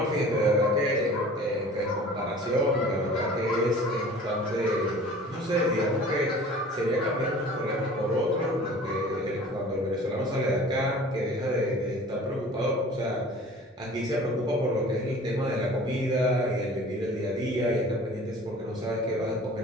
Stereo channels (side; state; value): both; normal; correlation 0.45